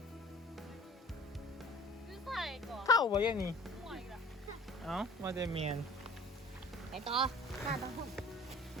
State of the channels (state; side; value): normal; both; correlation 0.45